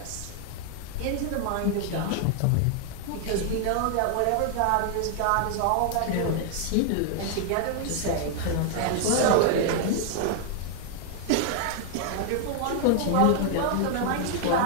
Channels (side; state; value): both; different; correlation 0.00